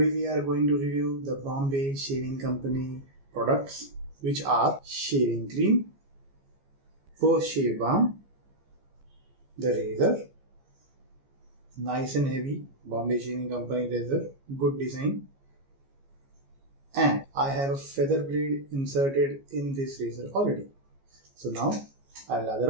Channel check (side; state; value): left; late; 15 ms